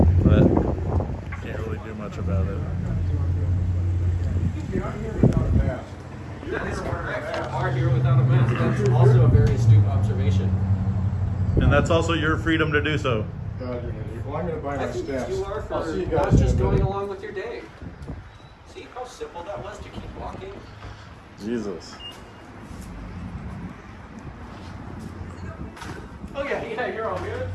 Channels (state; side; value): identical; both; correlation 1.00